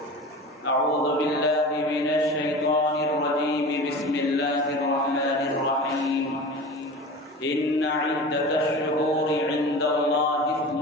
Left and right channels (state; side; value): normal; both; correlation 0.34